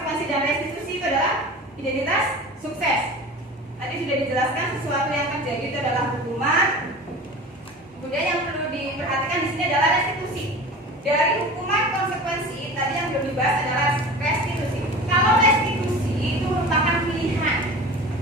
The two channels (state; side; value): normal; both; correlation 0.36